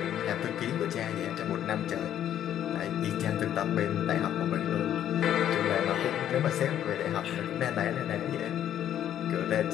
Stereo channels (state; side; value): quieter; right; 10.8 dB